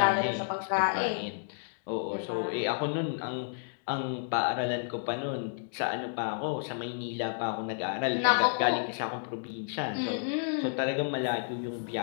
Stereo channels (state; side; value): silent; right; digital silence